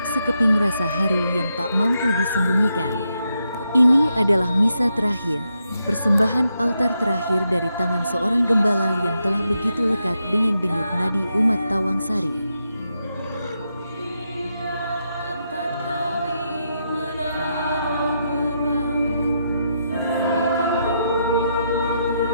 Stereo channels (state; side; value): inverted; both; correlation -0.82